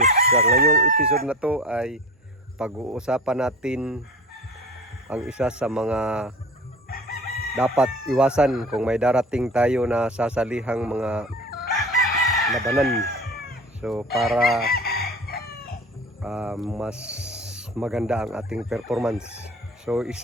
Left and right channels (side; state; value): both; normal; correlation 0.37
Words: Sa ngayong episode na to ay pag-uusapan natin ang isa sa mga dapat iwasan kung may darating tayo na sasalihang mga labanan. So para mas maganda ang ating performance. So